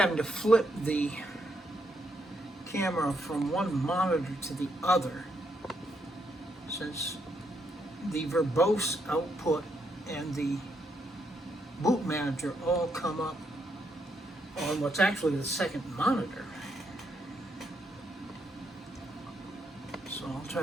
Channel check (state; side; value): normal; both; correlation 0.77